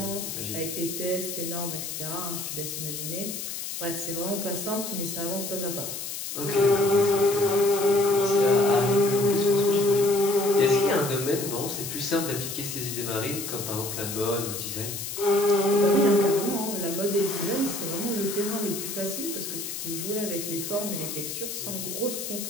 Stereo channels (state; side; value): noise; left; hiss, 6 dB below the sound